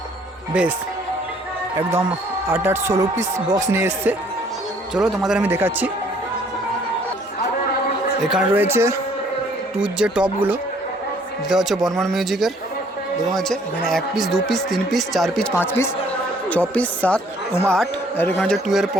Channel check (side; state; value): both; normal; correlation 0.61